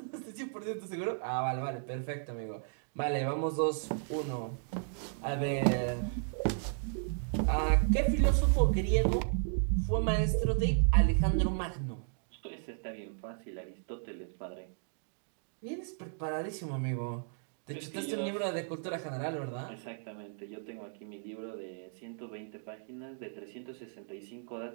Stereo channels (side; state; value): left; silent; digital silence